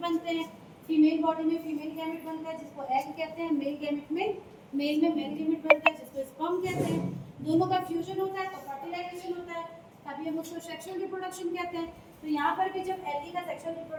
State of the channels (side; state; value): both; identical; correlation 1.00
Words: हैं। फीमेल बॉडी में फीमेल गैमेट बनता है जिसको एग कहते हैं, मेल गैमेट में मेल गैमेट बनता है जिसको स्पर्म कहते हैं। दोनों का फ्यूजन होता है तो फर्टिलाइजेशन होता है, तभी हम उसको सेक्सुअल रिप्रोडक्शन कहते हैं। तो यहाँ पर भी जब एलगी का सेक्सुअल